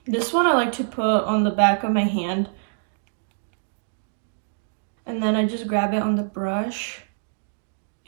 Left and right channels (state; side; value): silent; left; digital silence